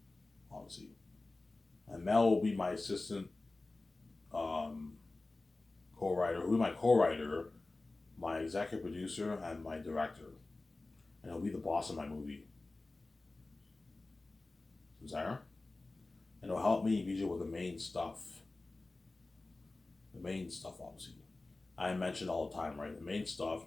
obviously, and Mel will be my assistant um, co-writer. Who will be my co-writer, my executive producer, and my director, and he'll be the boss of my movie. Sarah, and it'll help me visual with the main stuff. The main stuff, obviously. I mention all the time, right? The main stuff.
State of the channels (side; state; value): right; quieter; 3.2 dB